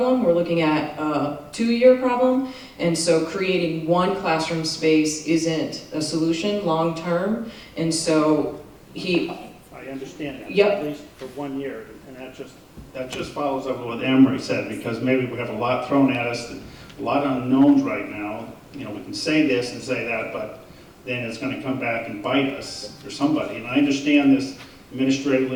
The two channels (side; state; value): both; identical; correlation 1.00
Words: we're looking at a 2-year problem. And so creating one classroom space isn't a solution long-term. And so I understand that, Yep. at least for 1 year, and that just follows up with what Emery said, because maybe we have a lot thrown at us, a lot of unknowns right now. You know, we can say this and say that, but then it's going to come back and bite us or somebody. And I understand this